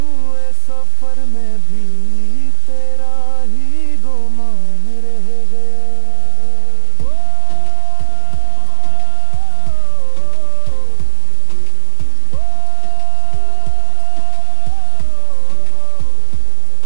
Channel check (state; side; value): different; both; correlation -0.01